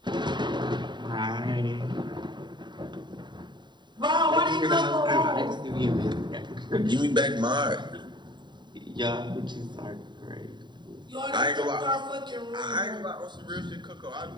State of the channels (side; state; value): left; late; 0.22 ms